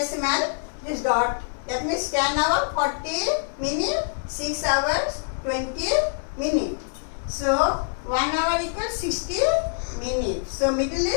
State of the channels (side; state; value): right; silent; digital silence